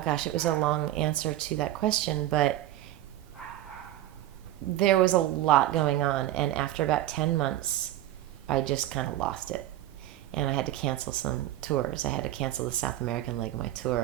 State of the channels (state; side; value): quieter; left; 14.3 dB